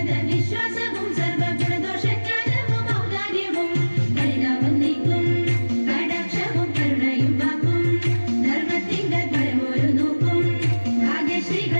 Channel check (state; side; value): inverted; both; correlation -1.00